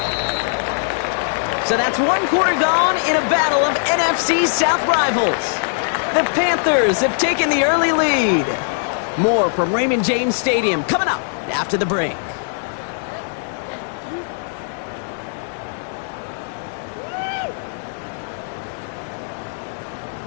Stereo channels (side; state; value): right; silent; digital silence